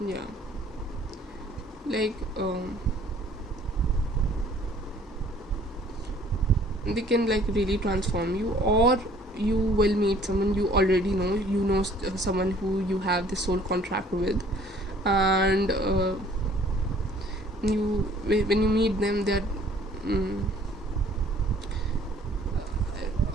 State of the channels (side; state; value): both; normal; correlation 0.56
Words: yeah, like they can like really transform you. Or you will meet someone you already know, someone who you have this soul contract with, and when you meet them, they're